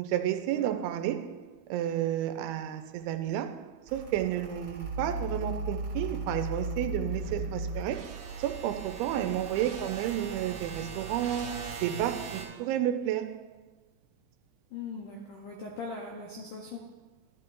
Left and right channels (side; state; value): left; quieter; 8.5 dB